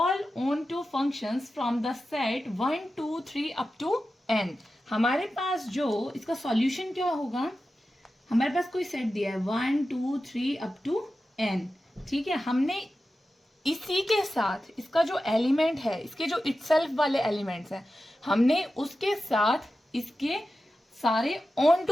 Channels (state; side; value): normal; both; correlation 0.93